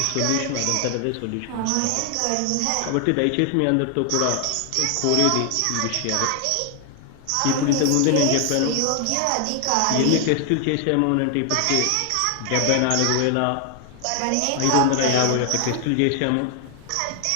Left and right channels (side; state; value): both; different; correlation 0.00